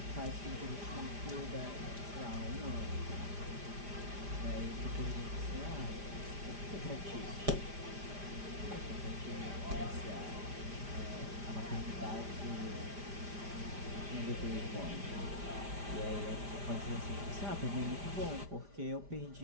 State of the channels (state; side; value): late; left; 5.0 ms